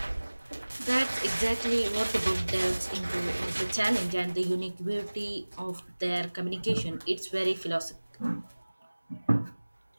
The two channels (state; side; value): inverted; both; correlation -1.00